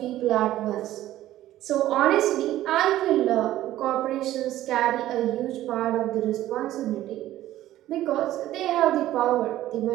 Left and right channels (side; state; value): left; quieter; 14.1 dB